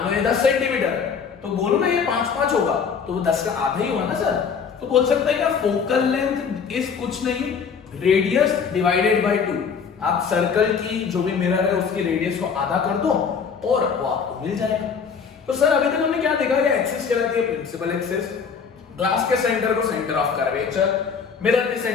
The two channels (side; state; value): right; quieter; 6.2 dB